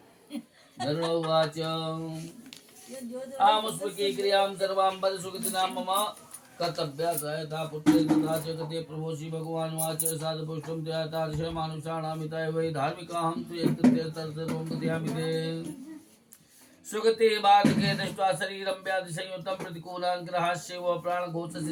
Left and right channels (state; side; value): identical; both; correlation 1.00